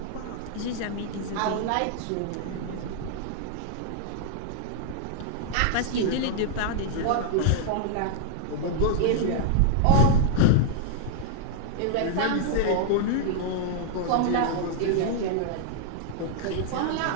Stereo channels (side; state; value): both; different; correlation -0.01